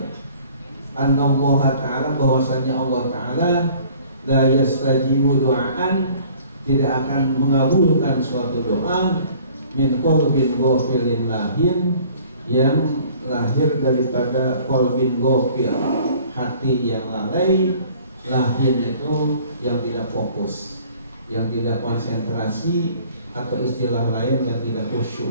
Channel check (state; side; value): inverted; both; correlation -0.53